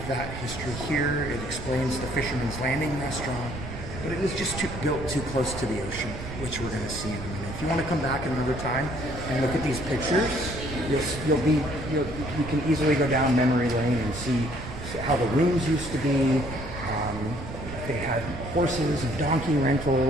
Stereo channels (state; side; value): noise; right; rumble, 9 dB below the sound